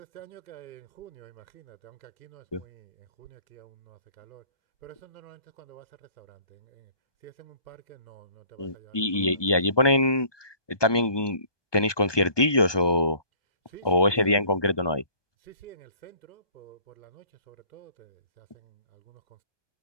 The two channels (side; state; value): right; late; 1.2 ms